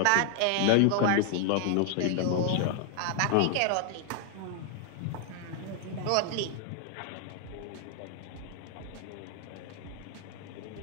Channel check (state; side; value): different; both; correlation 0.00